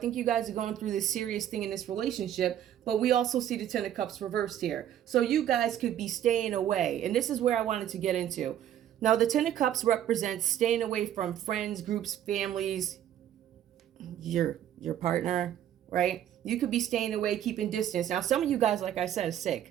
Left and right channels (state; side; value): quieter; left; 10.9 dB